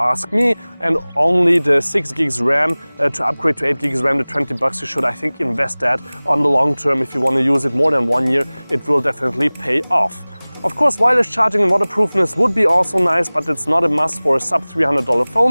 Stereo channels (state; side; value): inverted; both; correlation -1.00